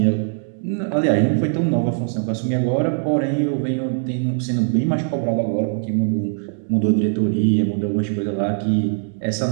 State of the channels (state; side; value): silent; left; digital silence